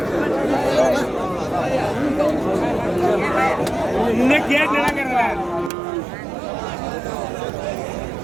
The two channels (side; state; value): left; drops out; at 5.7 s